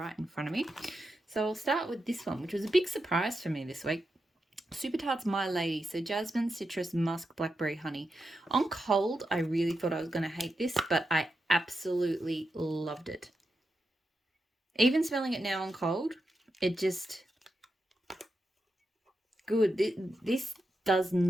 in front of me. So I'll start with this one, which was a big surprise for me this week. Super Tarts My Lady. So Jasmine, citrus, musk, blackberry, honey. On cold, I really thought I was going to hate this, but I absolutely loved it. Even smelling it now on cold, it just... good. This does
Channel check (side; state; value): both; normal; correlation 0.87